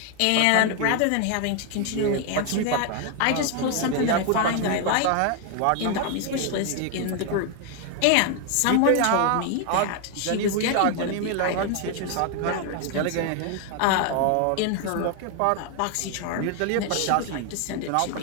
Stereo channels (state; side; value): different; both; correlation 0.01